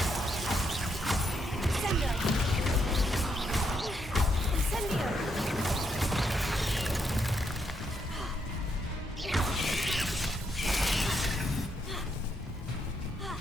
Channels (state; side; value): normal; both; correlation 0.77